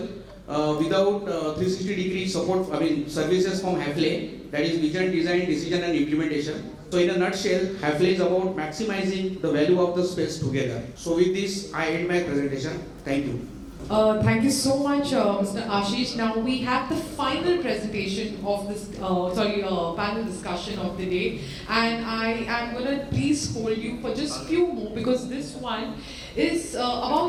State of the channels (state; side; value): identical; both; correlation 1.00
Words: without 360-degree support, services from Hafele, that is vision, design, decision and implementation. So in a nutshell, Hafele is about maximizing the value of the space together. So with this, I end my presentation. Thank you. Thank you so much, Mr. Ashish. Now we have the final presentation of this, panel discussion of the day, and I am going to please hold you for just few more, because this one is